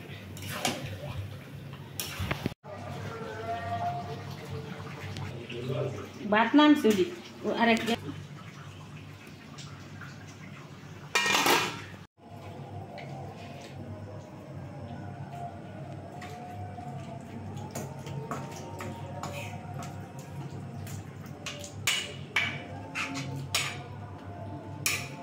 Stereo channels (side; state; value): both; identical; correlation 1.00